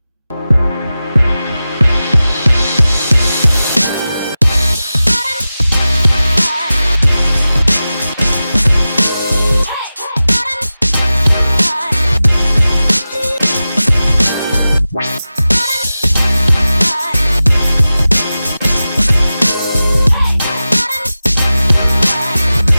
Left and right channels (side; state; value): both; inverted; correlation -0.94